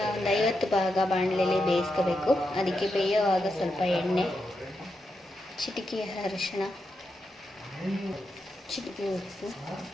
ಒಂದು 50 ಭಾಗ ಬಾಣಲೆಯಲ್ಲಿ ಬೇಯಿಸ್ಕೋಬೇಕು. ಅದಕ್ಕೆ ಬೇಯೋವಾಗ ಸ್ವಲ್ಪ ಎಣ್ಣೆ, ಚಿಟಿಕೆ ಅರಿಶಿಣ, ಚಿಟಿಕೆ ಉಪ್ಪು,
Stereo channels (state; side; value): normal; both; correlation 0.85